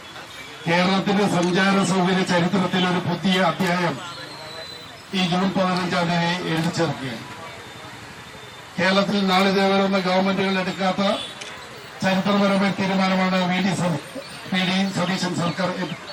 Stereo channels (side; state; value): both; identical; correlation 1.00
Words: കേരളത്തിന്റെ സഞ്ചാര സൗകര്യ ചരിത്രത്തിൽ ഒരു പുതിയ അധ്യായം ഈ ജൂൺ 15 എഴുതി ചേർക്കുകയാണ്. കേരളത്തിൽ നാളിതുവരെ ഗവൺമെന്റുകൾ എടുക്കാത്ത ചരിത്രപരമായ തീരുമാനമാണ് വി ഡി സതീശൻ സർക്കാർ